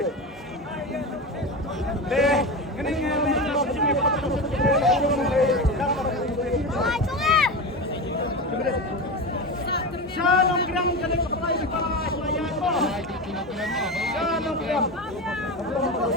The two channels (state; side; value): normal; both; correlation 0.22